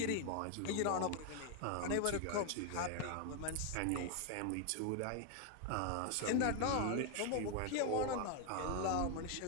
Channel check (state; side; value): different; both; correlation 0.01